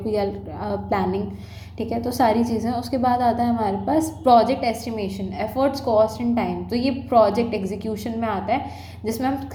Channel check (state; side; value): identical; both; correlation 1.00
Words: we are planning, ठीक है, तो सारी चीज़ें। उसके बाद आता है हमारे पास project estimation, efforts, cost and time. तो ये प्रोजेक्ट एग्जीक्यूशन में आता है जिसमें